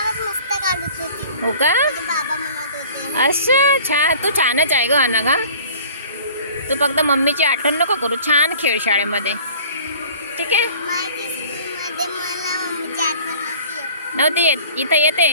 हो का? अच्छा, छान. तू छानच आहे ग अनघा. तू फक्त मम्मीची आठवण नको करू. छान खेळ शाळेमध्ये. ठीक आहे. नव्हती येत, इथं येते.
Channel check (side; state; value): both; inverted; correlation -0.46